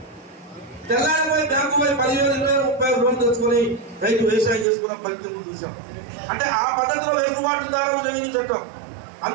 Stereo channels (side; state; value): left; drops out; at 4.7 s